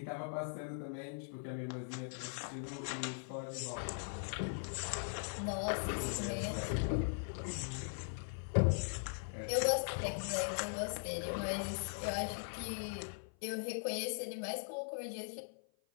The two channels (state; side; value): silent; right; 51 dB below the other